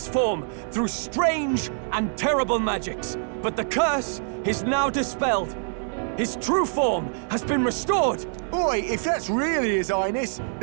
form through strange and terrible magics, but the curse is now dispelled. His true form has been restored! Oi, if that's really His Highness,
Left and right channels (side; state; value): left; silent; 62 dB below the other